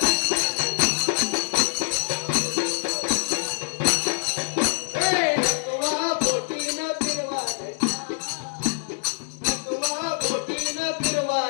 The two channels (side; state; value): right; silent; digital silence